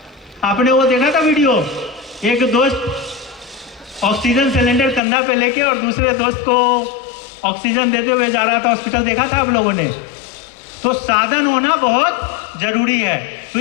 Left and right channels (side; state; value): right; drops out; at 5.0 s